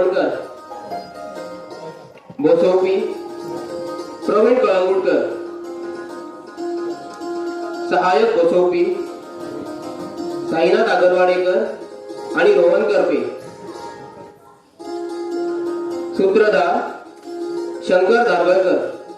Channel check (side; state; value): both; identical; correlation 1.00